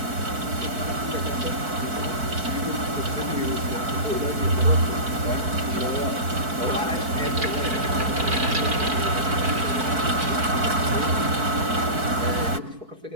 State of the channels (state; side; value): late; left; 4.6 ms